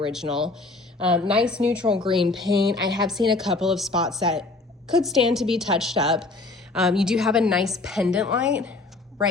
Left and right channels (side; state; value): right; quieter; 3.4 dB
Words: Nice neutral green paint. I have seen a couple of spots that could stand to be touched up. You do have a nice pendant light